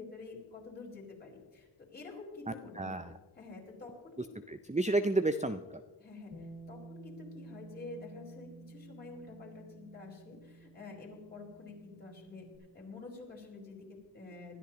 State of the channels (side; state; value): both; normal; correlation 0.60